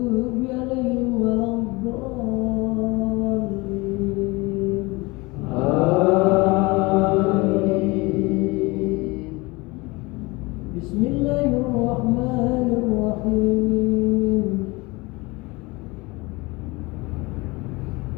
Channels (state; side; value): quieter; right; 24.2 dB